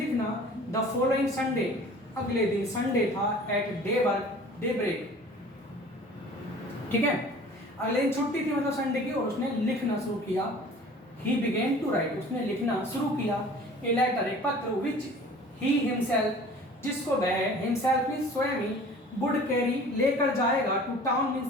द फॉलोइंग संडे, अगले दिन संडे था, एट डे ब्रेक, ठीक है, अगले दिन छुट्टी थी मतलब संडे की, और उसने लिखना शुरू किया। ही बिगेन टू राइट, उसने लिखना शुरू किया। ए लेटर, एक पत्र, विच ही हिमसेल्फ, जिसको वह हिमसेल्फ मीन्स स्वयं ही, वुड कैरी, लेकर जाएगा, टू टाउन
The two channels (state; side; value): normal; both; correlation 0.46